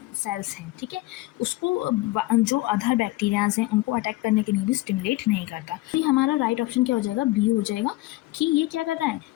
सेल्स हैं, ठीक है, उसको जो अदर बैक्टीरियाज हैं उनको अटैक करने के लिए भी स्टिमुलेट नहीं करता। तो ये हमारा राइट ऑप्शन क्या हो जाएगा, बी हो जाएगा, कि ये क्या कर रहा है,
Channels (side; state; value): right; quieter; 19.3 dB